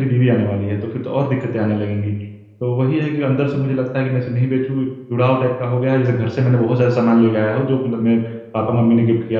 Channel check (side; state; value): both; identical; correlation 1.00